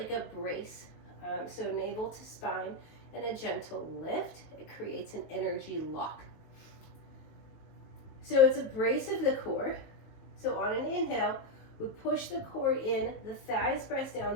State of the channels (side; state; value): right; late; 19 ms